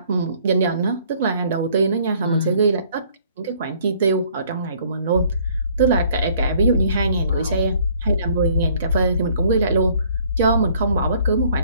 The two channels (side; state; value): both; inverted; correlation -0.59